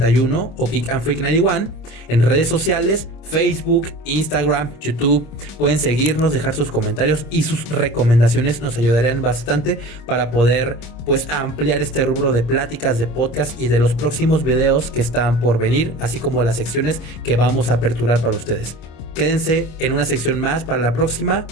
o Geek and Freak 91 en redes sociales, Facebook, Instagram, YouTube. Pueden seguirnos, dejar sus comentarios y sus recomendaciones, nos ayudarían bastante para poder pues ampliar este rubro de pláticas, de podcast y de los próximos videos que están por venir, así como las secciones que vamos a aperturar para ustedes. Quédense en una sección más para la próxima.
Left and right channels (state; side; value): late; right; 26 ms